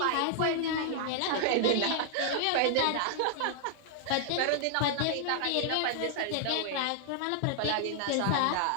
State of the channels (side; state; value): both; different; correlation -0.01